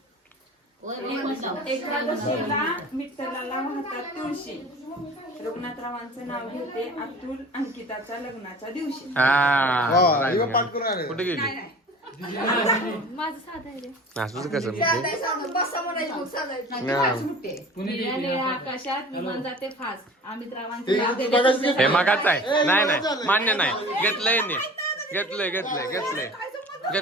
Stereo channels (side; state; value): both; normal; correlation 0.42